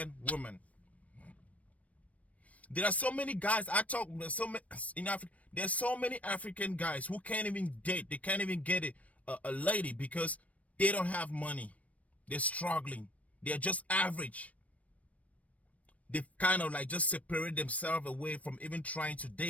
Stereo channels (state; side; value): late; right; 0.067 ms